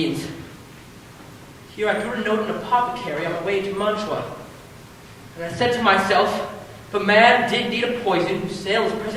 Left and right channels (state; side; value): identical; both; correlation 1.00